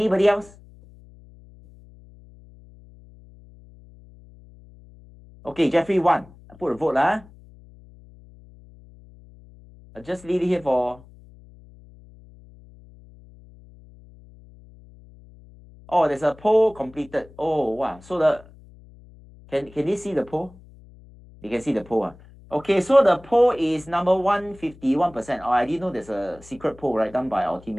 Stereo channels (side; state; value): left; noise; hum, 23 dB below the sound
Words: else? Okay, Jeffrey 1. I put a vote lah. I'll just leave it here for. Oh, there's a poll completed. Oh wow. So can they see the poll? They can see the poll. Okay, so the poll is number 1, 51%. Oh, I didn't know there's a secret poll, right, done by our